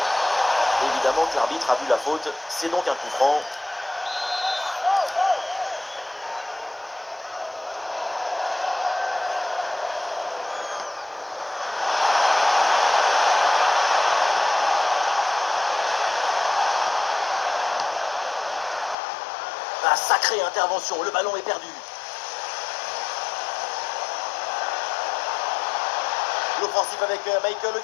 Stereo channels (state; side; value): drops out; right; at 18.9 s